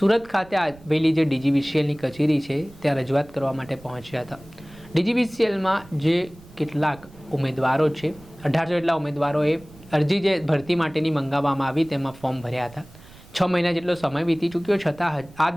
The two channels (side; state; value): right; noise; rumble, 22 dB below the sound